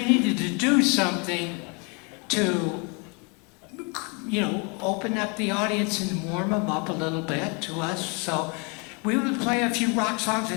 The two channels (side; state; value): right; quieter; 33.2 dB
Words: needed to do something to, open up the audience and warm them up a little bit to us. So we would play a few rock songs